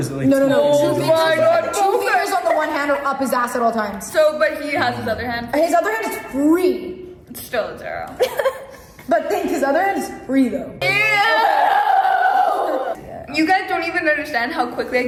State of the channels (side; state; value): both; identical; correlation 1.00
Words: it like No. 2 Oh fingers? my god. 2 fingers on the one hand or up his ass at all times. So, but he has his other hand. His other hand is free. It's still a 0. But think his other hand is free though. You guys don't even understand how quickly I